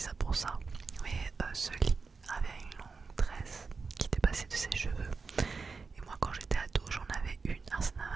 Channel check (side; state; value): left; quieter; 4.7 dB